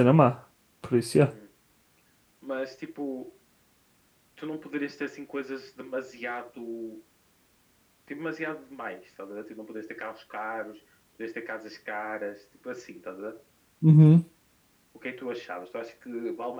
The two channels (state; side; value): identical; both; correlation 1.00